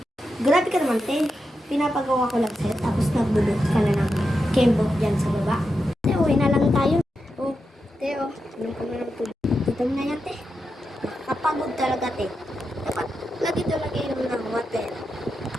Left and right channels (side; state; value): both; normal; correlation 0.88